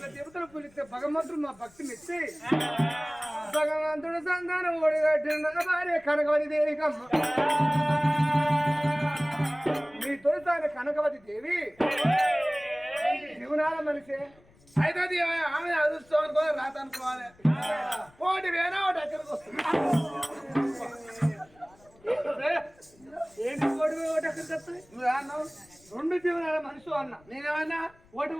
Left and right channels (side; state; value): left; noise; rumble, 29 dB below the sound